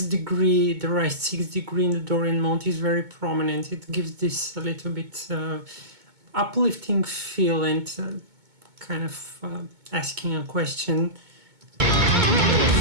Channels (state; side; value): late; left; 2.2 ms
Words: degree, the right 6 degree in the Dorian mode is very prominent. It gives this a little bit uplifting feel and kind of asking a question.